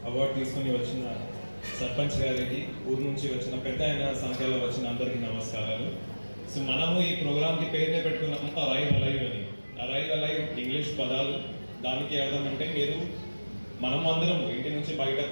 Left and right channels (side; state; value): both; inverted; correlation -1.00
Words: అవార్డు తీసుకొని వచ్చిన సర్పంచ్ గారికి, ఊరు నుంచి వచ్చిన పెద్ద అయిన సంఖ్యలో వచ్చిన అందరికీ నమస్కారాలు. సో మనము ఈ ప్రోగ్రామ్కి పేరునే పెట్టుకున్నాము అరైవ్ అలైవ్ అని. అరైవ్ అలైవ్ ఇంగ్లీష్ పదాలు, దానికి అర్థం అంటే మనం అందరం ఇంటి నుంచి బయట